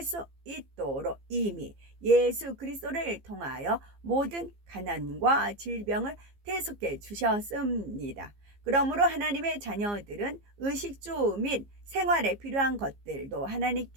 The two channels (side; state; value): left; late; 15 ms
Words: 수 있도록 이미 예수 그리스도를 통하여 모든 가난과 질병을 대속해 주셨습니다. 그러므로 하나님의 자녀들은 의식주 및 생활에 필요한 것들도